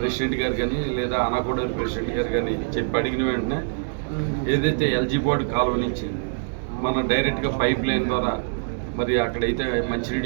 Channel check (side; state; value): left; silent; 62 dB below the other